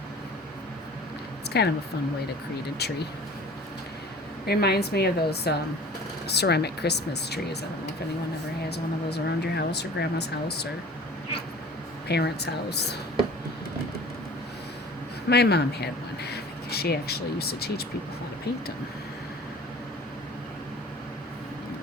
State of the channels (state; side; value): normal; both; correlation 0.44